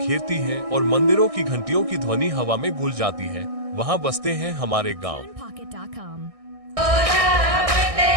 हैं और मंदिरों की घंटियों की ध्वनि हवा में घुल जाती है, वहां बसते हैं हमारे गांव।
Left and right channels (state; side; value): late; left; 1.6 ms